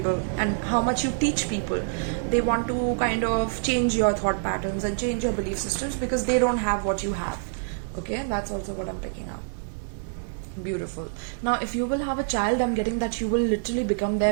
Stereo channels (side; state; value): left; silent; 61 dB below the other